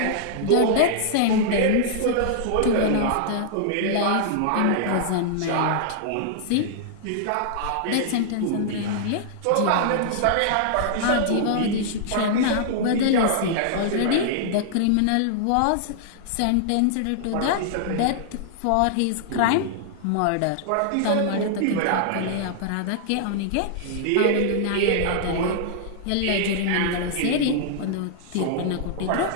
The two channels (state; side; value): different; both; correlation -0.01